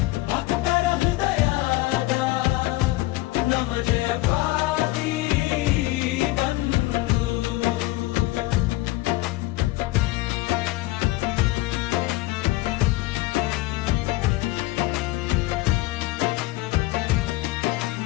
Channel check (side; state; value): right; quieter; 18.8 dB